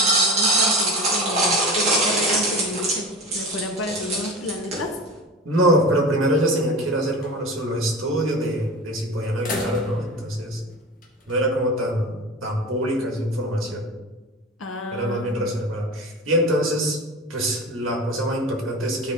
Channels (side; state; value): both; normal; correlation 0.31